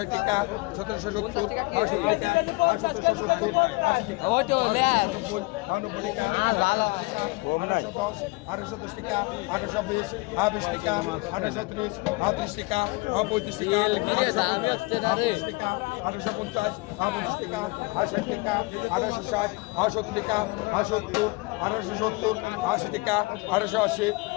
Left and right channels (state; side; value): quieter; right; 25.5 dB